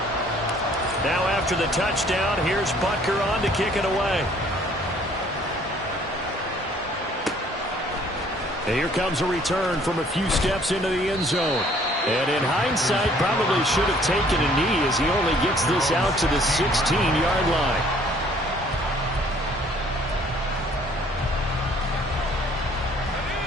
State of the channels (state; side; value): normal; both; correlation 0.59